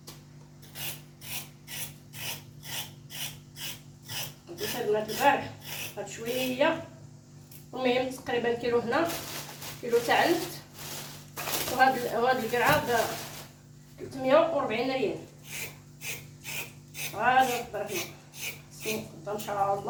بديت البنات البارح هاد شويه، المهم تقريبا كيلو هنا، كيلو تاع النفط، وهاد القرعه ب 340 ريال. غادي نقدر هنا ان شاء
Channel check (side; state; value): both; identical; correlation 1.00